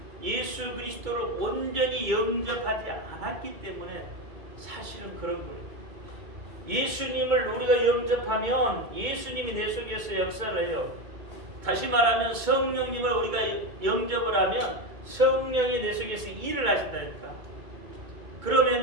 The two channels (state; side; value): late; left; 2.2 ms